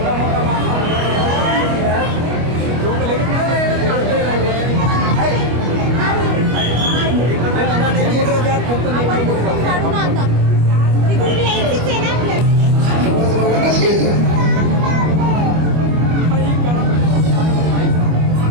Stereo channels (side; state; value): left; late; 25 ms